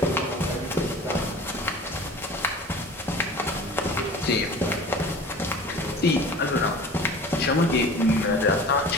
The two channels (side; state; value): both; normal; correlation 0.41